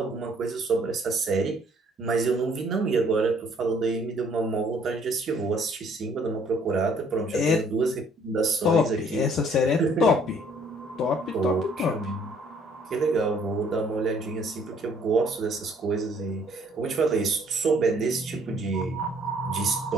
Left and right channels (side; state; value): both; normal; correlation 0.61